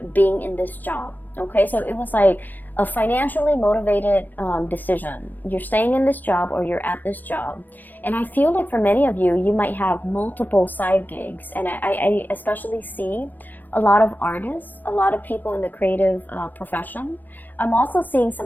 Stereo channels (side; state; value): right; late; 0.086 ms